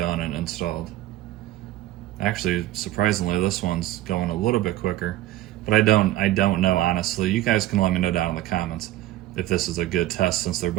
and installed. Actually, surprisingly, this one's going a little bit quicker, but I don't know, honestly. You guys can let me know down in the comments if this is a good test, since they're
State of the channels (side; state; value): left; quieter; 15.2 dB